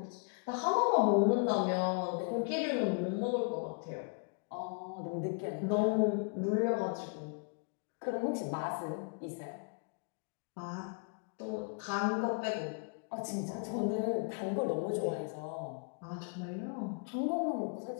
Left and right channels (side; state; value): right; quieter; 39.8 dB